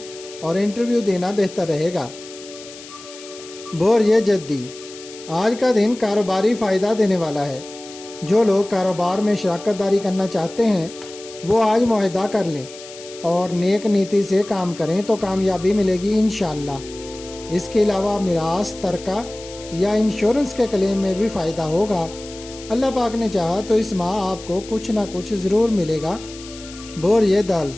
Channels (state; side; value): noise; left; hiss, 17 dB below the sound